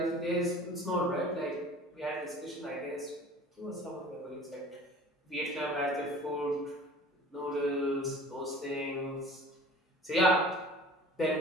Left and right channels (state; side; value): normal; both; correlation 0.44